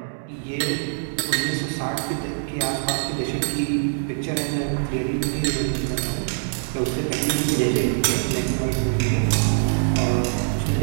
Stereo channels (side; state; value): left; silent; digital silence